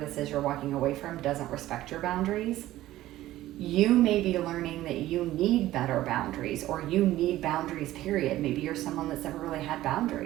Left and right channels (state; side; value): quieter; left; 15.1 dB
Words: is you're walking away from doesn't respect your boundaries. You may be learning that you need better boundaries, or you need boundaries, period. Maybe you're someone that's never really had